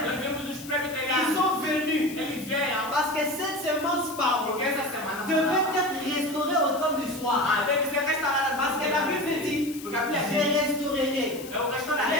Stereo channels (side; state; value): left; noise; hiss, 15 dB below the sound